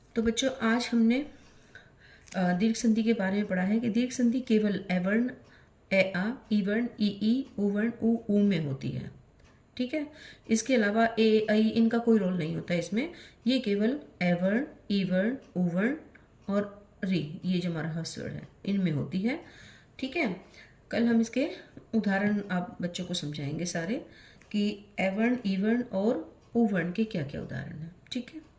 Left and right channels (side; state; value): both; identical; correlation 1.00